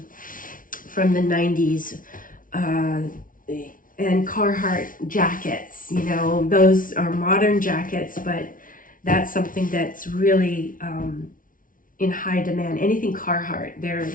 the 90s. And Carhartt jackets, you know, those are modern jackets, but that's something that's really in high demand. Anything Carhartt, they're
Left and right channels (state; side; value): late; right; 0.39 ms